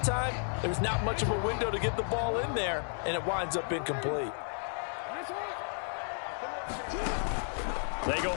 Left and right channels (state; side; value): silent; right; 56 dB below the other